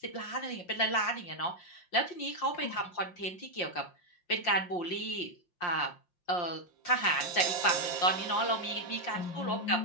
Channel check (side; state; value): right; late; 5.7 ms